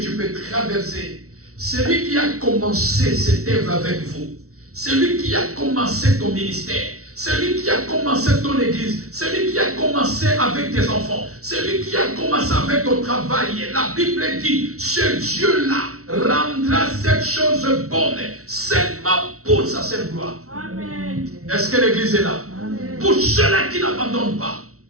tu peux traverser, celui qui a commencé cette œuvre avec vous, celui qui a commencé ton ministère, celui qui a commencé ton église, celui qui a commencé avec tes enfants, celui qui a commencé avec ton travail, la Bible dit, ce Dieu-là rendra cette chose bonne seulement pour sa seule gloire. Amen. Est-ce que l'église est là? Amen. Pour ceux-là qui n'abandonnent pas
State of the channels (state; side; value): late; left; 0.64 ms